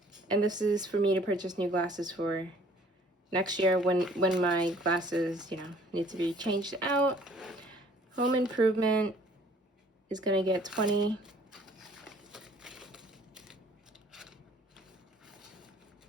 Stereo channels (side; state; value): both; normal; correlation 0.57